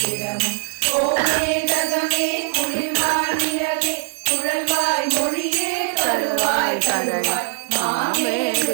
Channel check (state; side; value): silent; left; digital silence